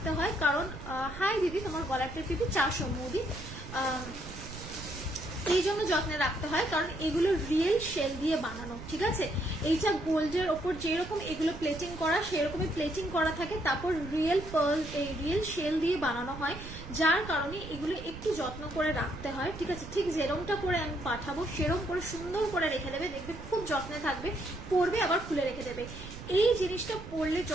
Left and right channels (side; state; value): right; noise; rumble, 12 dB below the sound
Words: হয় কারণ, হাই দিদি, তোমার গলার টিপি 400 মোদি, এই জন্য যত্নে রাখতে হয় কারণ এগুলো রিয়েল শেল দিয়ে বানানো, ঠিক আছে। এইটা গোল্ডের ওপর যেরকম এগুলো প্লেটিং করা, সেরকমই প্লেটিং করা থাকে, তারপর রিয়েল পার্ল, এই রিয়েল শেল দিয়ে বানানো হয়, যার কারণে এগুলো একটু যত্ন করে রাখতে হয়, ঠিক আছে। ঠিক যেরকমটা করে আমি পাঠাবো সেরকম করে সুন্দর করে রেখে দেবে, দেখবে খুব যত্নে থাকবে, পরবে আবার খুলে রেখে দেবে। এই জিনিসটা পরলে